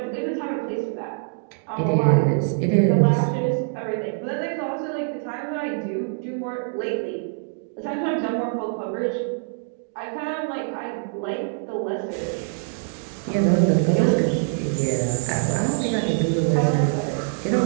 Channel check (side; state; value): left; silent; digital silence